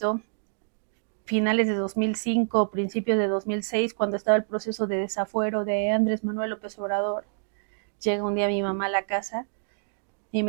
finales de 2005, principios de 2006, cuando estaba el proceso de desafuero de Andrés Manuel López Obrador, llega un día mi mamá a la casa y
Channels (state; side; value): silent; left; digital silence